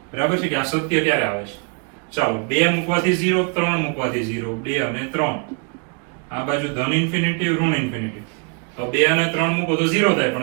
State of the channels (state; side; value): quieter; left; 36.3 dB